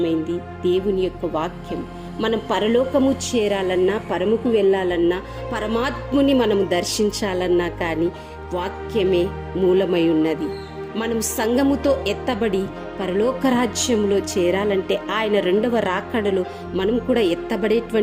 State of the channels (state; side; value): identical; both; correlation 1.00